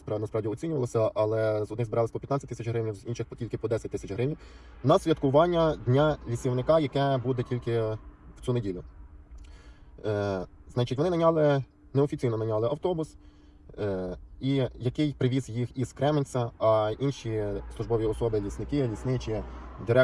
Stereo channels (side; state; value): both; identical; correlation 1.00